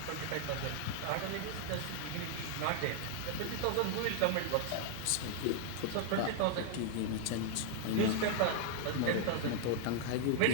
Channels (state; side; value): different; both; correlation -0.01